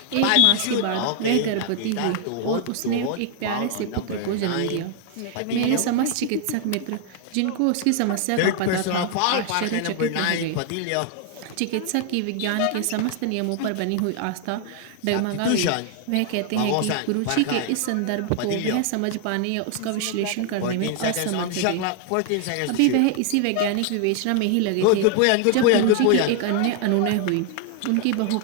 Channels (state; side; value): different; both; correlation 0.00